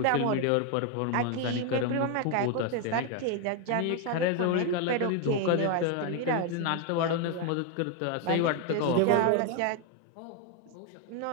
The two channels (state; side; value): different; both; correlation 0.01